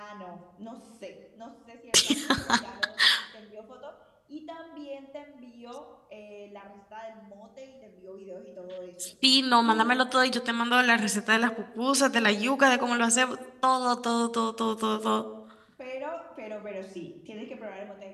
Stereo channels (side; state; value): both; identical; correlation 1.00